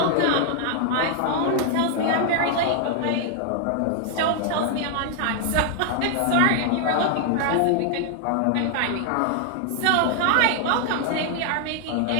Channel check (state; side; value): different; both; correlation 0.00